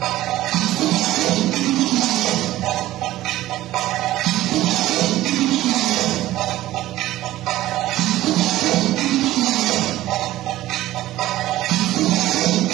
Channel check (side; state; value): left; quieter; 15.4 dB